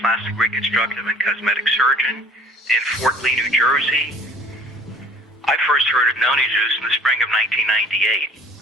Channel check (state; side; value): normal; both; correlation 0.52